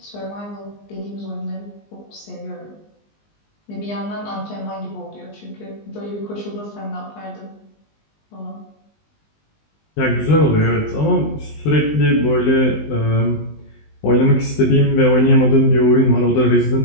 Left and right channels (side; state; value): right; late; 19 ms